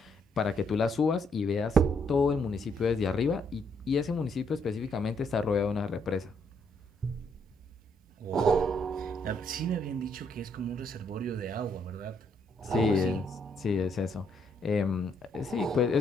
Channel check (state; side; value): normal; both; correlation 0.72